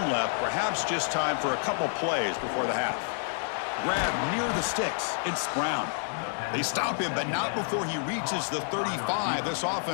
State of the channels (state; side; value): silent; right; digital silence